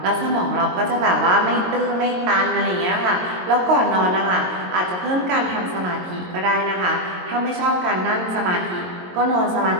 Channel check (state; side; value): late; left; 22 ms